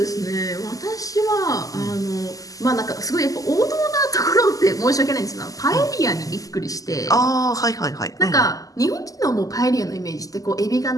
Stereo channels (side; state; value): right; late; 0.17 ms